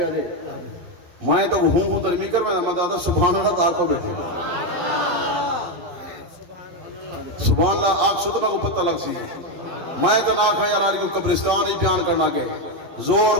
آتے میں تو ہوں تو نہیں کر میں دادا سبحان اللہ دار کو بیٹھے سبحان اللہ آگ سو تو میں کو پتہ لگ سی میں تو نہ کھا یار کو قبرستان ہی بیان کرنا کے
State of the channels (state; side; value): late; left; 11 ms